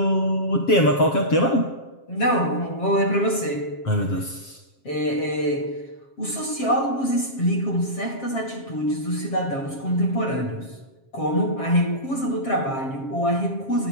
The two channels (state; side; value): late; right; 7.4 ms